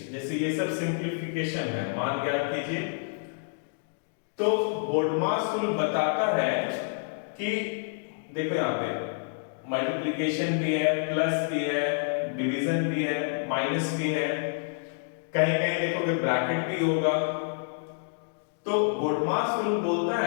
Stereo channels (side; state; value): right; silent; digital silence